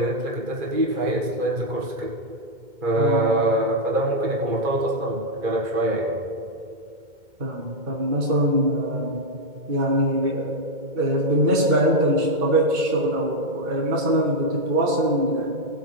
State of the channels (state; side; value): late; left; 2.2 ms